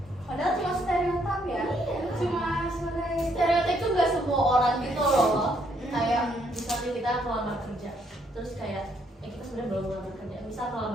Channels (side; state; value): both; normal; correlation 0.71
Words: Padahal cuma stereotip ya. Cuma sebagai stereotip itu nggak semua orang gitu loh. Kayak misalnya kita melamar kerja, terus kayak kita sebenarnya belum melamar kerja, misal